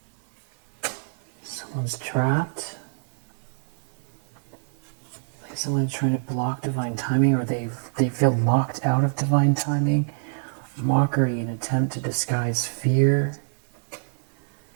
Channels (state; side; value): silent; left; 61 dB below the other